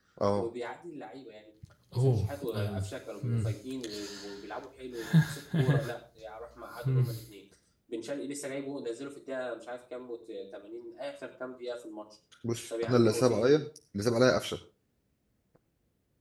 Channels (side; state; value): both; identical; correlation 1.00